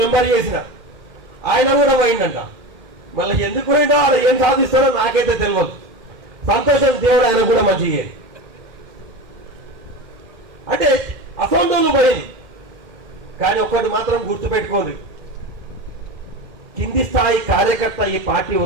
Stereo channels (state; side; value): late; left; 2.1 ms